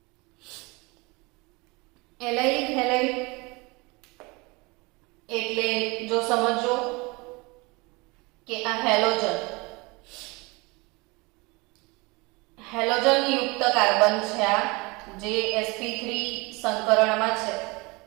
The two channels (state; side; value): quieter; left; 25.9 dB